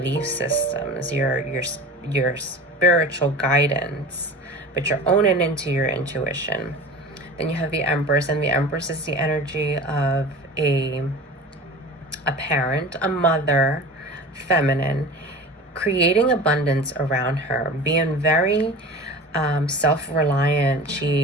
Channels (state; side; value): normal; both; correlation 0.36